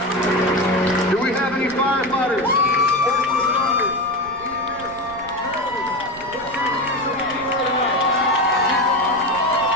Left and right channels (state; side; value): noise; right; rumble, 20 dB below the sound